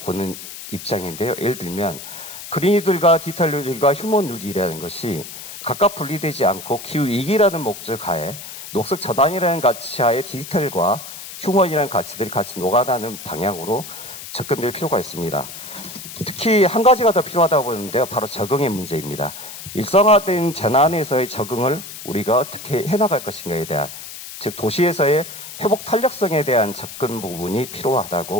보는 입장인데요. 예를 들면 그린이들과 디지털 뉴딜과 휴먼 뉴딜이라는 것이 각각 분리되지 않고 기후위기라는 목적 하에 녹색 전환이라는 가치 하에 디지털과 휴먼이라는 가치들이 같이 녹아나는 방향으로 접근될 필요가 있습니다. 특히 한 가지가 더 필요하다고 보는데요. 바로 적응의 문제입니다. 일상화된 재난에서의 적응을 우리가 어떻게 해나갈 것인가에 대한, 즉 도시에서의 회복 탄력성에 대한 접근 부분이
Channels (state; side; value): noise; left; hiss, 12 dB below the sound